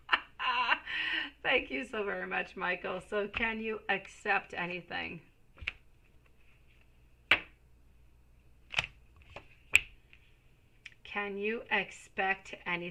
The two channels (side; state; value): both; identical; correlation 1.00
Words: Thank you so very much, Michael. So can you accept anything? Can you expect